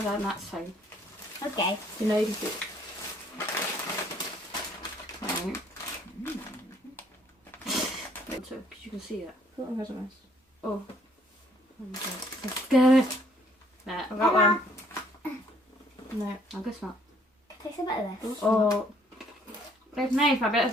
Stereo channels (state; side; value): normal; both; correlation 0.63